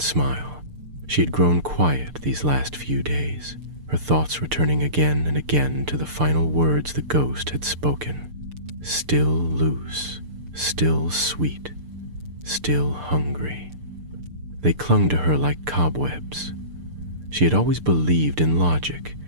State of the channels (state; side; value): late; left; 6.7 ms